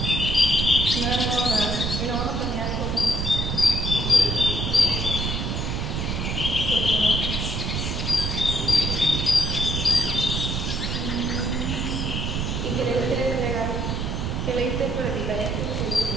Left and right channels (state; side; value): noise; right; rumble, 1 dB below the sound